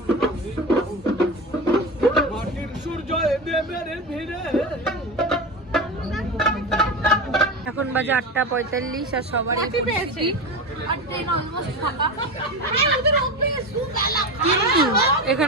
মাটির সূর্য দেবের ভিড়ে। এখন বাজে 8:45 আর সবারই পেয়েছি আর ট্রেন অলমোস্ট ফাঁকা।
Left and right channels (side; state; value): both; normal; correlation 0.22